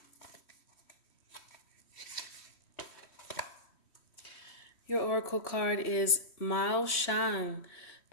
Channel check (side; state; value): right; late; 3.1 ms